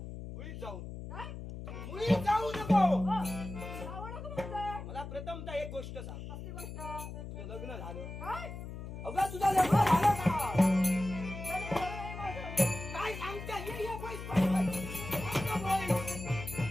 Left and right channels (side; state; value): left; noise; hum, 9 dB below the sound